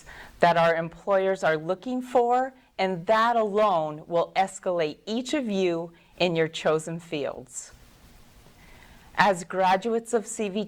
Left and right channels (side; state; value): both; identical; correlation 1.00